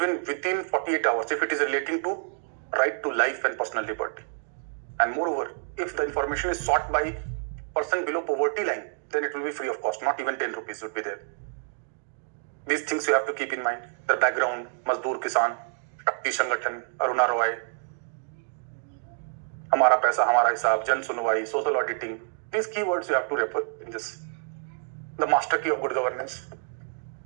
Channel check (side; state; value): left; silent; digital silence